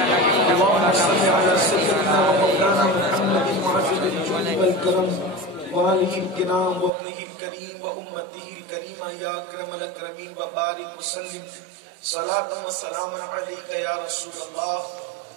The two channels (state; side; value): drops out; left; at 6.9 s